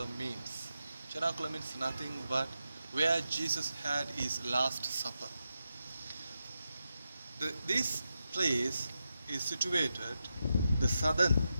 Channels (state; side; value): inverted; both; correlation -0.88